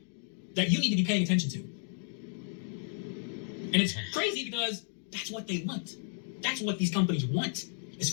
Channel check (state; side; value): silent; right; 56 dB below the other